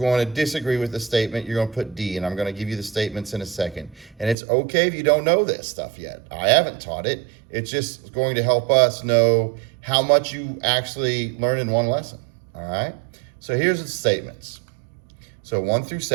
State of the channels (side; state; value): left; drops out; at 4.4 s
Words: to disagree with the statement, you're going to put D. And I'm going to give you the statements in a second. And it's okay if you don't know this stuff yet. I haven't taught it. It's just going to help us know how much you actually learn in one lesson. All right? So here's the statements. So 1 through